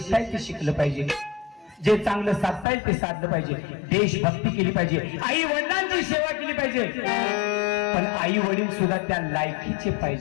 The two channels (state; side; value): drops out; right; at 2.7 s